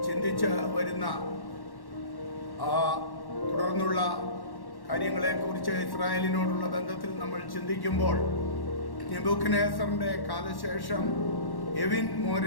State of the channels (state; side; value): late; right; 1.1 ms